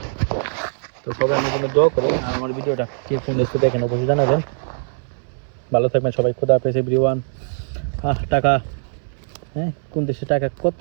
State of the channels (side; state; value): left; silent; 65 dB below the other